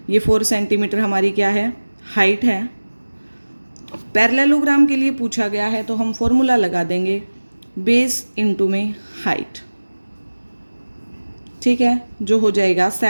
ये 4 सेंटीमीटर हमारी क्या है? हाइट है। पैरेललोग्राम के लिए पूछा गया है तो हम फॉर्मूला लगा देंगे बेस इंटू में हाइट। ठीक है, जो हो जाएगा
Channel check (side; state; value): both; inverted; correlation -1.00